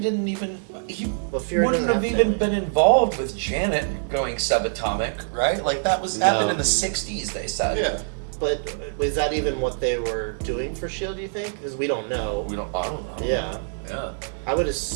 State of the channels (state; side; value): silent; left; 62 dB below the other